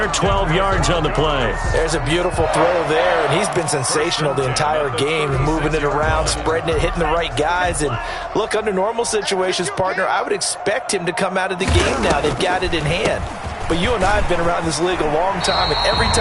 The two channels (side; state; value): both; identical; correlation 1.00